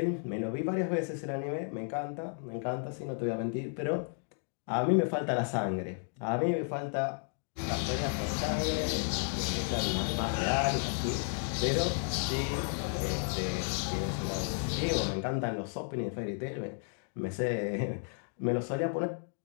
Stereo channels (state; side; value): silent; right; 56 dB below the other